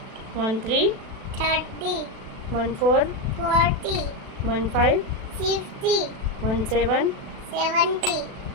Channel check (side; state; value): left; late; 36 ms